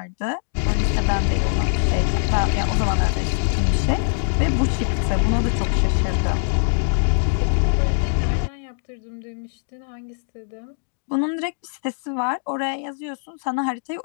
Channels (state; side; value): silent; right; digital silence